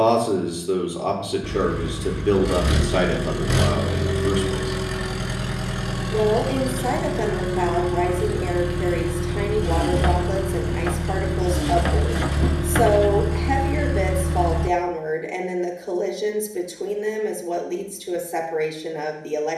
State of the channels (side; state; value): both; identical; correlation 1.00